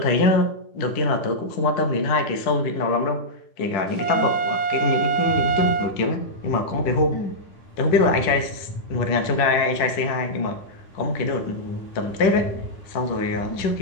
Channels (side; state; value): right; late; 10 ms